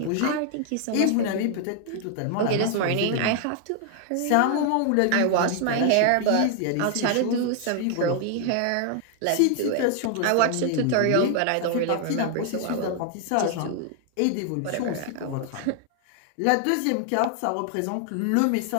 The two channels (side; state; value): both; different; correlation 0.00